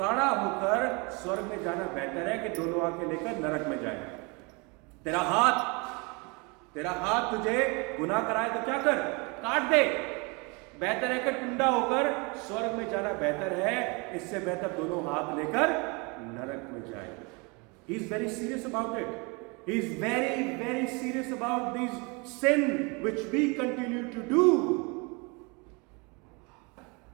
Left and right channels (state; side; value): quieter; left; 29.8 dB